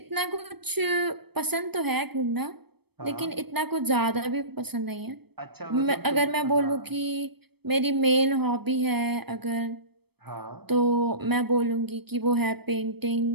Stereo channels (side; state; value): left; late; 0.97 ms